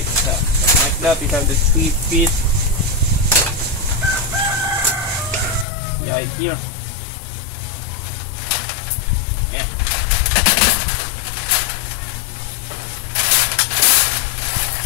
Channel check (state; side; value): drops out; right; at 5.7 s